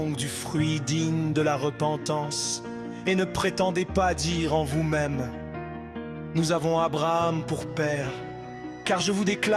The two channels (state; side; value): identical; both; correlation 1.00